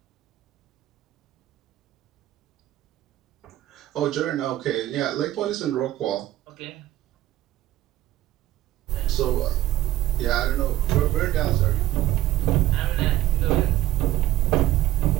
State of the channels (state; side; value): quieter; left; 14.5 dB